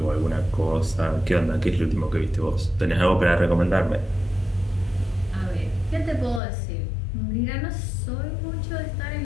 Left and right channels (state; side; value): drops out; right; at 6.4 s